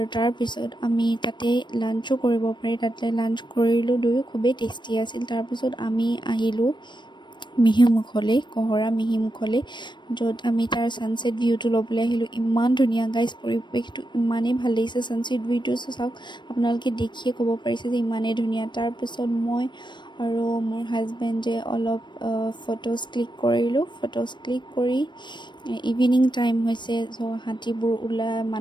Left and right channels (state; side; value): late; right; 0.22 ms